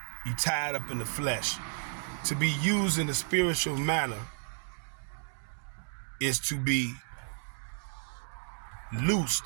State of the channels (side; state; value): left; silent; 56 dB below the other